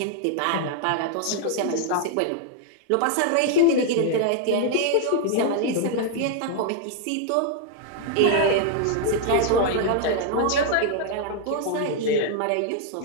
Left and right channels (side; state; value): both; different; correlation 0.00